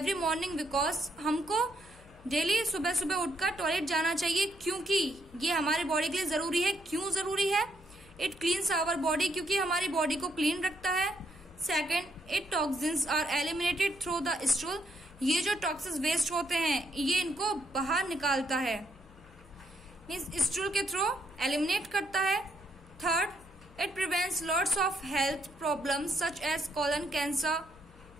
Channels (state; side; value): noise; left; hum, 23 dB below the sound